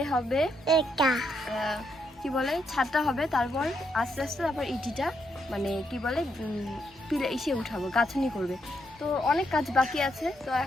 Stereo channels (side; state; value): both; normal; correlation 0.78